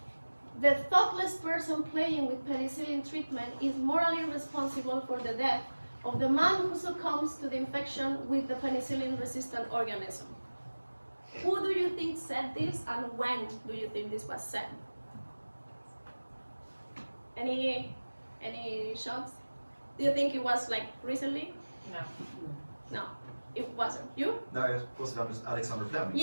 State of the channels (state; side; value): inverted; both; correlation -1.00